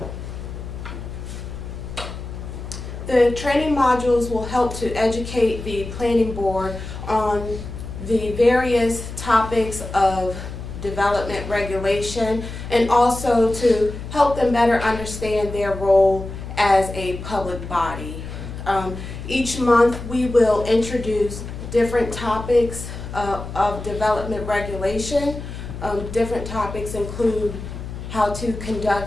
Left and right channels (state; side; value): noise; left; hum, 9 dB below the sound